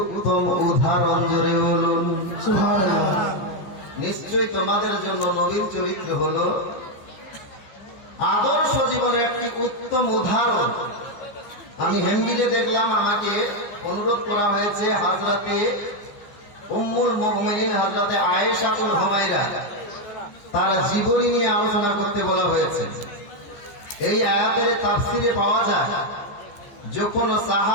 উদাহরণ। জোরে বলুন সুবহানাল্লাহ। নিশ্চয়ই তোমাদের জন্য নবীর চরিত্র হলো আদর্শ জীবনের একটি উত্তম উদাহরণ। আমি হেন্ডিতে দেখলাম, আমাকে অনুরোধ করা হয়েছে হযরতে উম্মুল মুমিনিন হযরতে আয়েশাতুল হুমায়রা তার জীবনী নিয়ে আলোচনা করতে বলা হয়েছে। এই আয়াতের তাফসিরে পাওয়া যায়, যখন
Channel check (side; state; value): right; late; 15 ms